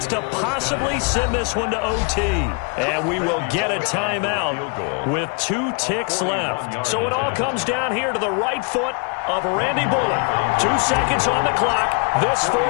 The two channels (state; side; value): quieter; right; 35.1 dB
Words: to possibly send this one to OT. And we will get a timeout with 2 ticks left. So it all comes down here to the right foot of Randy Bullock. 2 seconds on the clock. This